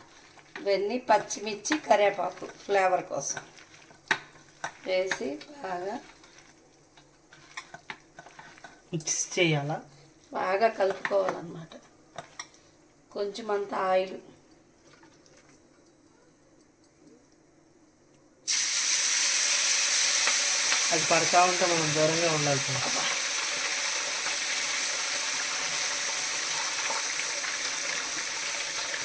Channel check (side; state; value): both; identical; correlation 1.00